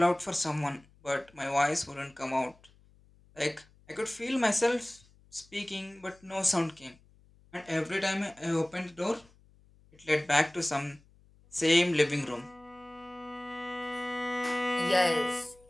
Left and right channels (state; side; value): noise; left; hum, 29 dB below the sound